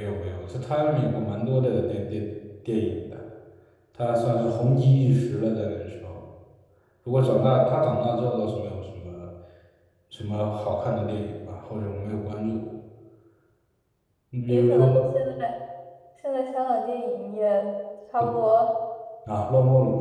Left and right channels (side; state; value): both; identical; correlation 1.00